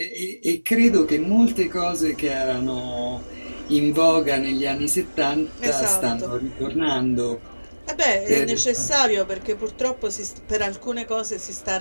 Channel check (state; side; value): inverted; both; correlation -1.00